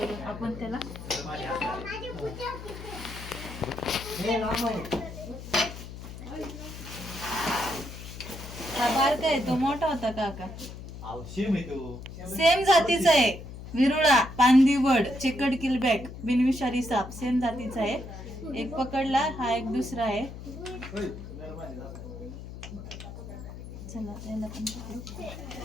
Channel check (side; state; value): left; noise; hum, 12 dB below the sound